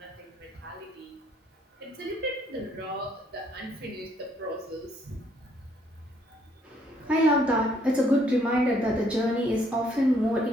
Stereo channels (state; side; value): normal; both; correlation 0.67